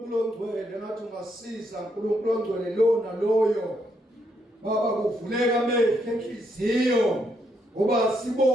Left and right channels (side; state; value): both; normal; correlation 0.76